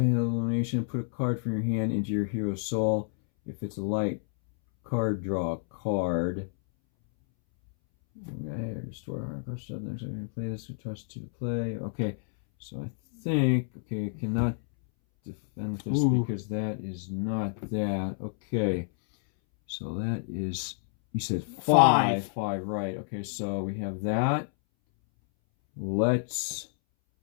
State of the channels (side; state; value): right; silent; 58 dB below the other